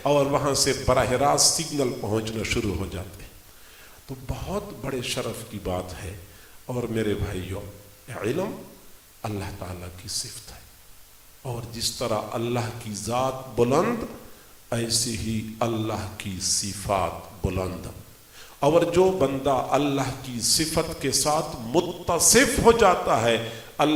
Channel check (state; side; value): identical; both; correlation 1.00